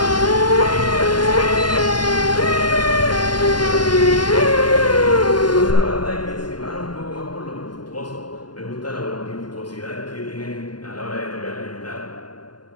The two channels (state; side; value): late; right; 0.71 ms